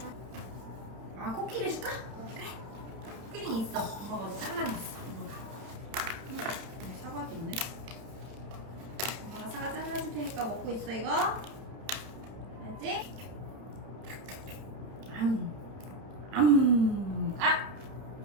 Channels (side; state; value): left; late; 30 ms